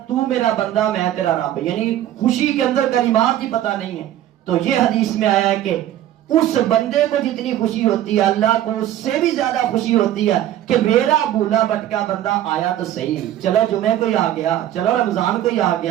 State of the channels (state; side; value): quieter; left; 12.4 dB